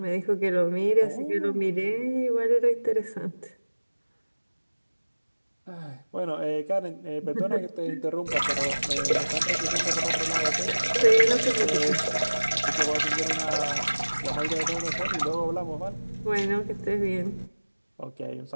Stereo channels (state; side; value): inverted; both; correlation -1.00